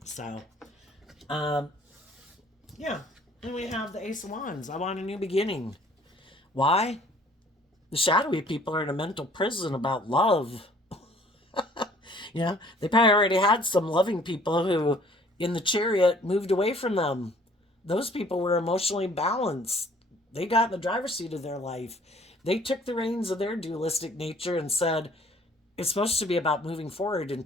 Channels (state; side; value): normal; both; correlation 0.56